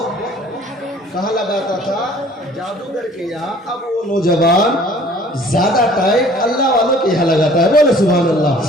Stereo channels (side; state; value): both; normal; correlation 0.52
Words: کہاں لگاتا تھا, جادوگر کے یہاں, اب وہ نوجوان زیادہ ٹائم اللہ والوں کے یہاں لگاتا ہے. بولے سبحان اللہ.